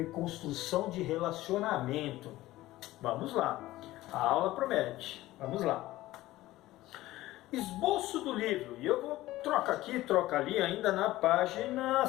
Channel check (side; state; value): right; quieter; 16.7 dB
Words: de relacionamento. Vamos lá. A aula promete. Vamos lá. Esboço do livro, e eu vou trocar aqui, troca ali, ainda na página